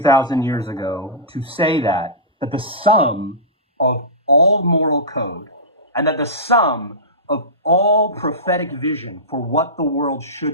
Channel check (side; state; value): both; normal; correlation -0.18